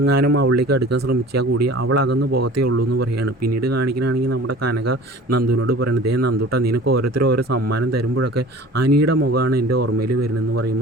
അവളിലേക്ക് അടുക്കാൻ ശ്രമിച്ചാൽ കൂടി അവൾ അകന്ന് പോകത്തേ ഉള്ളൂ എന്ന് പറയുകയാണ്. പിന്നീട് കാണിക്കുകയാണെങ്കിൽ നമ്മുടെ കനക നന്ദുവിനോട് പറയുന്നത്, ദേ നന്ദുട്ട, നിനക്ക് ഓരോരുത്തരും ഓരോ സമ്മാനം തരുമ്പോഴൊക്കെ അനിയുടെ മുഖമാണ് എൻ്റെ ഓർമ്മയിൽ വരുന്നതെന്ന്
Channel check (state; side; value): normal; both; correlation 0.43